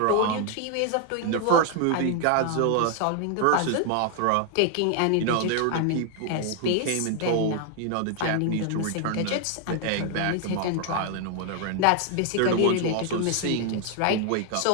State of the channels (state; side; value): different; both; correlation 0.00